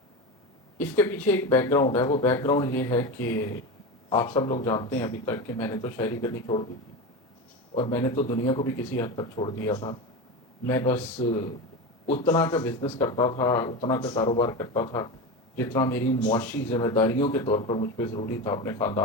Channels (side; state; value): both; normal; correlation 0.22